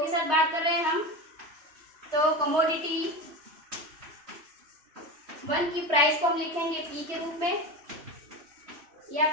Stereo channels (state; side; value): late; left; 3.2 ms